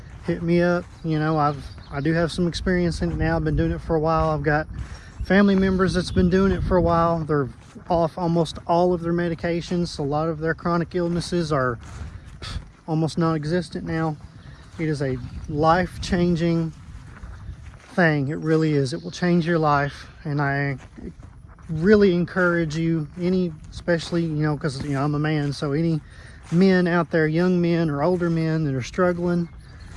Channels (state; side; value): identical; both; correlation 1.00